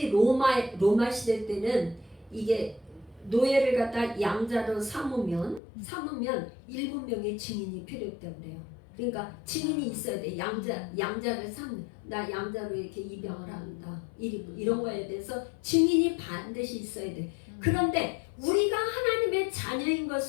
로마 시대 때는 이게 노예를 갖다 양자로 삼으면 7명의 증인이 필요했다고 그래요. 그러니까 증인이 있어야 돼. 양자를 나 양자로 이렇게 입양을 한다. 이런 거에 대해서 증인이 반드시 있어야 돼. 그런데 우리가 하나님의 자녀인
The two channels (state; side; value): drops out; right; at 5.6 s